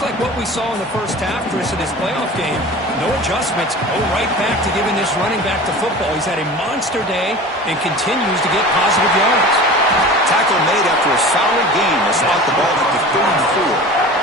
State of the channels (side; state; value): both; normal; correlation 0.37